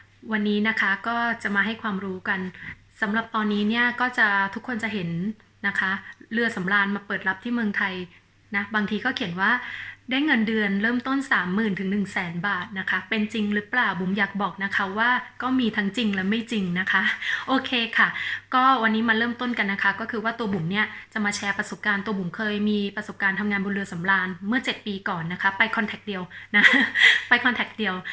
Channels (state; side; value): identical; both; correlation 1.00